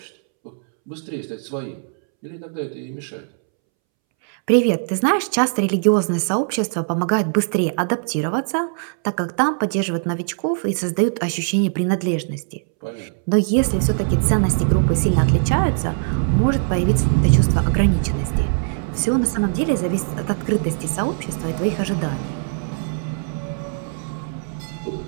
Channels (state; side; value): silent; left; 65 dB below the other